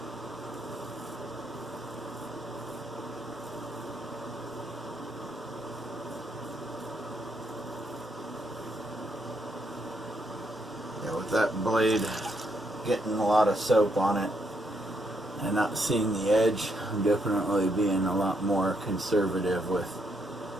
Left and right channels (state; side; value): normal; both; correlation 0.76